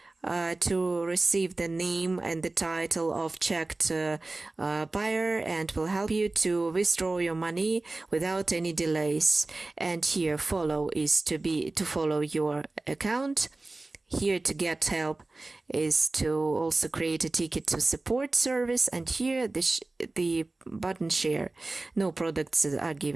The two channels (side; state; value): left; quieter; 3.1 dB